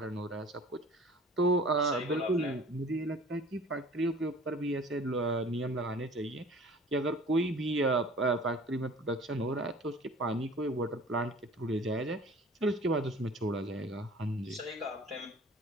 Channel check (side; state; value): both; normal; correlation 0.46